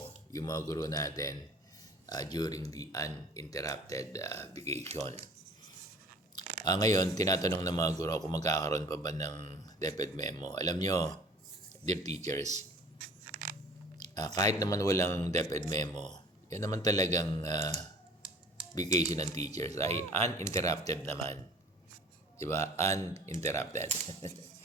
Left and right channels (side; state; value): both; normal; correlation 0.48